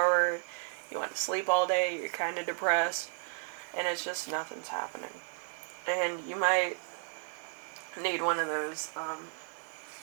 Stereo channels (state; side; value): silent; left; 55 dB below the other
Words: You want to sleep all day. You're kind of depressed. And it's just nothing's happening. And you might need one of those